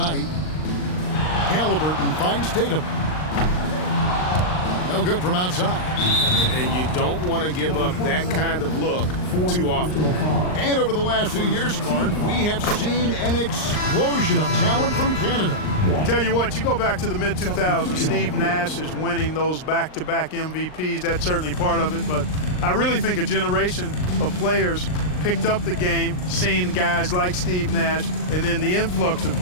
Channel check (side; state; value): right; late; 39 ms